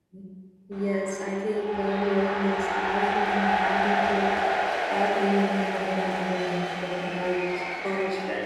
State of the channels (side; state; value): both; identical; correlation 1.00